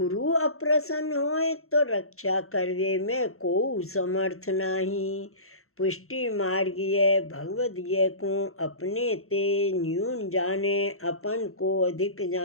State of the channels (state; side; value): late; right; 0.63 ms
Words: अप्रसन्न होए तो रक्षा करवे में को समर्थ नहीं। पुष्टि मार्गीय भगवदीय को अपने ते न्यून जाने, अपन को अधिक